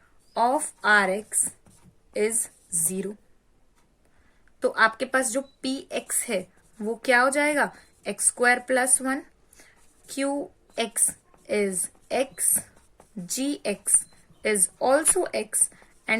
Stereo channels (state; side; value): identical; both; correlation 1.00